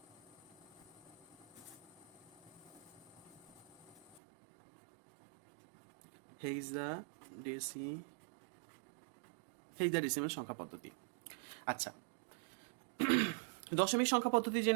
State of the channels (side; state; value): left; drops out; at 4.2 s